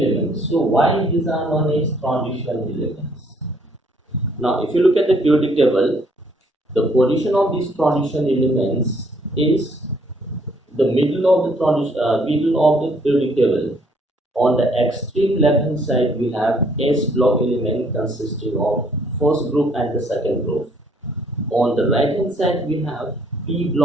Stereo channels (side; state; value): both; normal; correlation 0.65